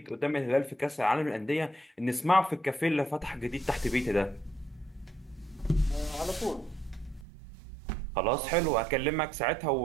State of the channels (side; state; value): left; drops out; at 7.2 s